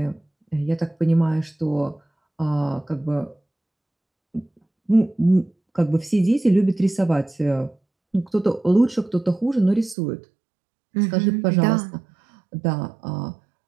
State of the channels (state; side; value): drops out; left; at 10.0 s